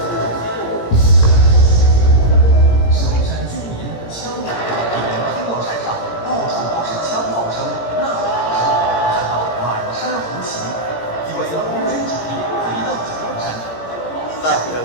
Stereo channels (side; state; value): right; late; 17 ms